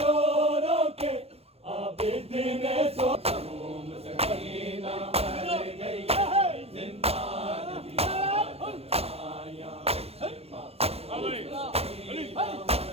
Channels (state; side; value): late; left; 0.29 ms